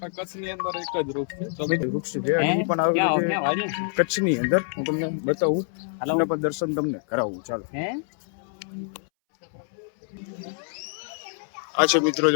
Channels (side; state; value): right; silent; 61 dB below the other